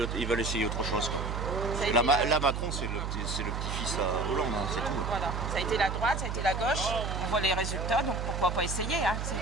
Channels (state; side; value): noise; right; hum, 3 dB below the sound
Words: essayer autre chose, quoi. Ça a été Là, Macron, c'est le petit-fils à Hollande, hein, c'est tout. Voilà. Ça a été la droite, ça a été la gauche. On voit les résultats, donc pourquoi pas essayer. Hein.